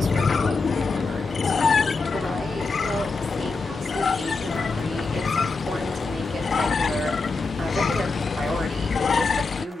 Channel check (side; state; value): right; quieter; 4.0 dB